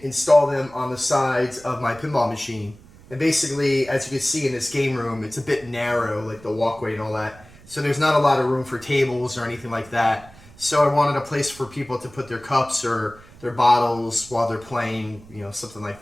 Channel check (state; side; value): noise; right; rumble, 22 dB below the sound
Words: install them on the sides of my pinball machine. And basically, as you can see in this game room, it's a bit narrow, like the walkway and all that. So there's not a lot of room for tables or anything like that. So I wanted a place for people to put their cups or their bottles while they're playing, something like